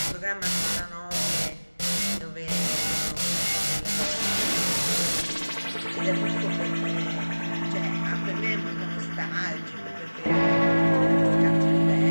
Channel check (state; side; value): inverted; both; correlation -1.00